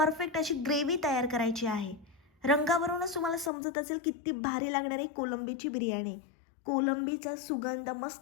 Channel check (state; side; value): drops out; right; at 3.5 s